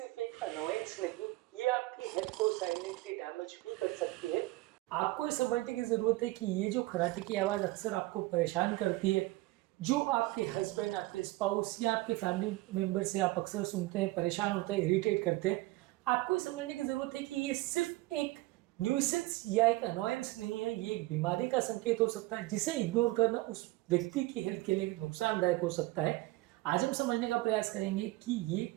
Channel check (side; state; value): left; quieter; 19.9 dB